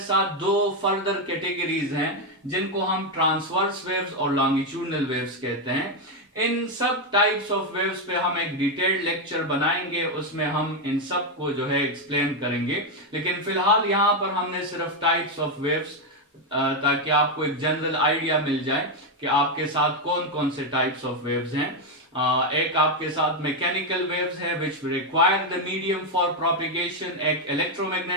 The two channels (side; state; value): both; normal; correlation 0.05